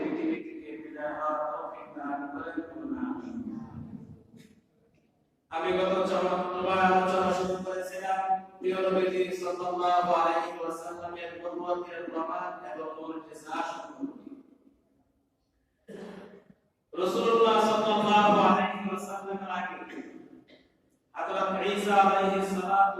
থেকে বিদায় হওয়ার তৌফিক দান করেন। আমি গত চরমবার আলোচনা শুরু করেছিলাম প্রিয় নবীজি সাল্লাল্লাহু আলাইহি ওয়াসাল্লামের নবুয়তের প্রমাণ এবং মুজিজা সম্পর্কে। রাসূলুল্লাহ সাল্লাল্লাহু আলাইহি ওয়াসাল্লামের আগে হযরত ঈসা আলাইহিস সালাতু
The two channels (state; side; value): identical; both; correlation 1.00